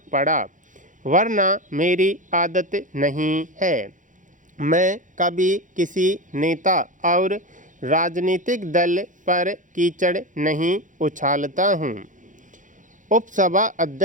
पड़ा, वरना मेरी आदत नहीं है। मैं कभी किसी नेता और राजनीतिक दल पर कीचड़ नहीं उछालता हूँ। उपसभा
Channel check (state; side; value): late; left; 0.37 ms